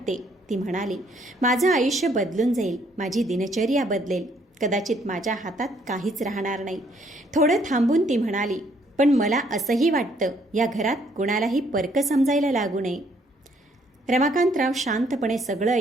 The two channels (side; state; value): both; normal; correlation 0.67